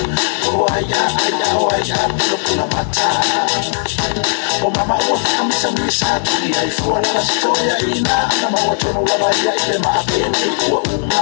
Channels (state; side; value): silent; right; digital silence